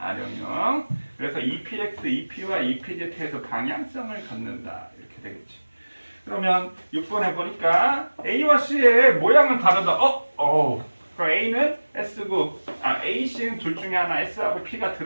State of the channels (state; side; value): inverted; both; correlation -1.00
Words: 그래서 EPX, EP와 EPZ에서 방향성을 갖는다. 이렇게 되겠지. 그러면 6번에 보니까 A와 C의 모양은 다르다. 그럼 A는 S고, A, C는 둘 중에 하나 S하고 P가